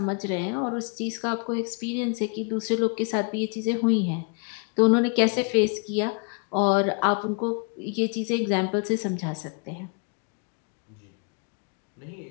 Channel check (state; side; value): quieter; right; 38.0 dB